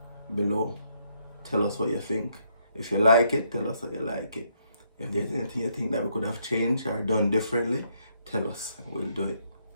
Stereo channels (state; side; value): inverted; both; correlation -0.73